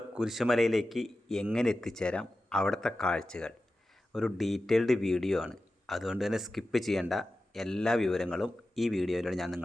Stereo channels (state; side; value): normal; both; correlation 0.93